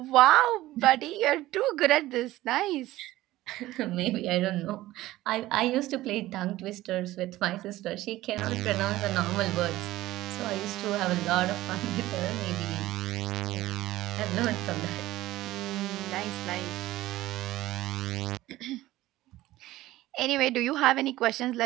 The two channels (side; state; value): left; quieter; 16.4 dB